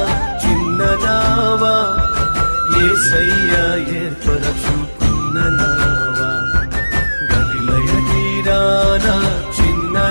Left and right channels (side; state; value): both; inverted; correlation -1.00